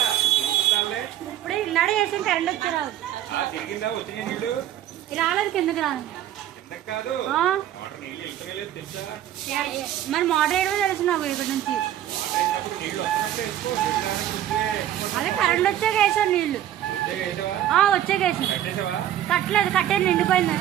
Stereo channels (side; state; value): left; quieter; 11.9 dB